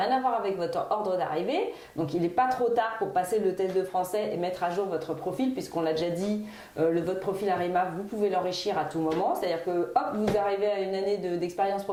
à voir avec votre ordre d'arrivée. Donc il n'est pas trop tard pour passer le test de français et mettre à jour votre profil, puisqu'on l'a déjà dit, votre profil Arima, vous pouvez l'enrichir à tout moment. C'est-à-dire que hop, vous arrivez à une année d'expérience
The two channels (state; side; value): identical; both; correlation 1.00